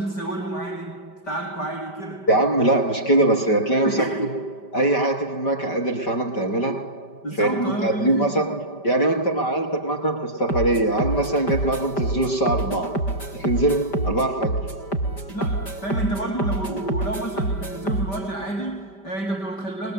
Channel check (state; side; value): late; right; 5.1 ms